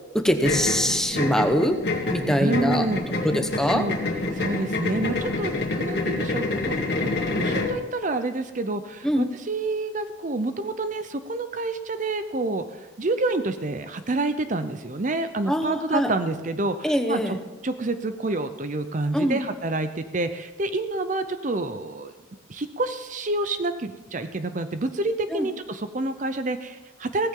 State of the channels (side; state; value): both; normal; correlation 0.51